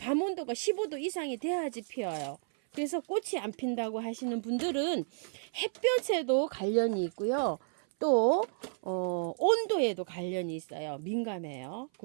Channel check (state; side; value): silent; left; 56 dB below the other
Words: 온도가 15도 이상이 돼야지 피어요. 그래서 꽃이 안 핀다고 하시는 분들은 햇볕에도 관련이 있고요. 또 온도에도 관련이 있어요. 민감해요.